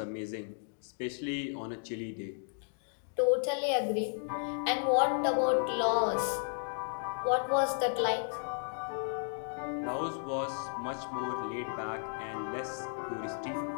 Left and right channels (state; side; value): silent; right; digital silence